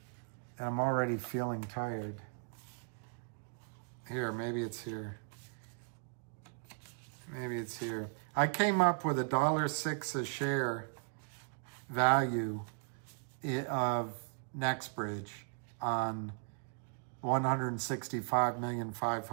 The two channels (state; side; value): quieter; left; 39.8 dB